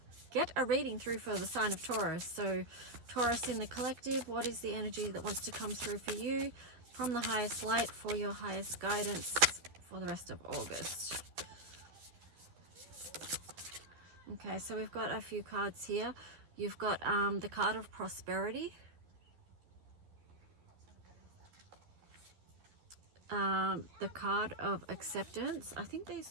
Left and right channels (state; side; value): late; left; 12 ms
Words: Get a reading through for the sign of Taurus. So Taurus in the collective, what is the energy that wants to come through for you from the highest light for your highest guidance for the rest of August? Okay, so we've got a few cards here. You've got the card of prosperity, the card of acceptance. I think these